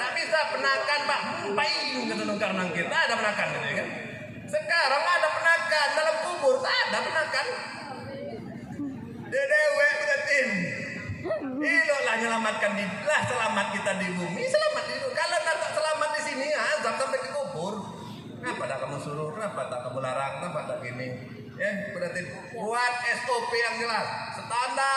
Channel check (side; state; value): both; identical; correlation 1.00